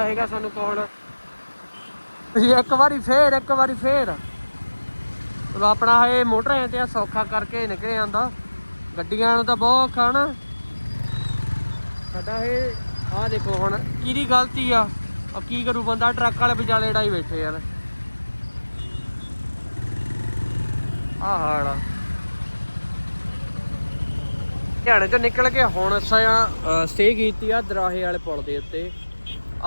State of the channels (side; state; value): both; inverted; correlation -1.00